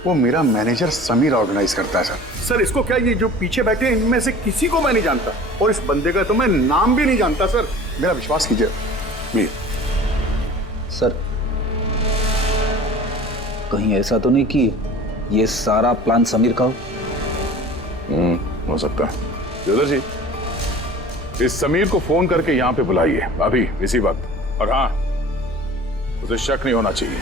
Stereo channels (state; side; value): normal; both; correlation 0.42